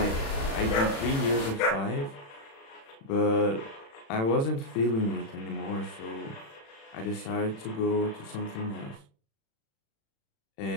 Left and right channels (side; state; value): right; late; 36 ms